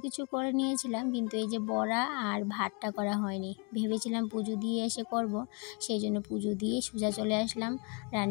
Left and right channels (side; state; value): right; quieter; 34.0 dB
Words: কিছু করে নিয়েছিলাম, কিন্তু এই যে বড়া আর ভাতটা করা হয়নি। ভেবেছিলাম পুজো দিয়ে এসে করব, সেই জন্য পুজো দিয়ে সোজা চলে আসলাম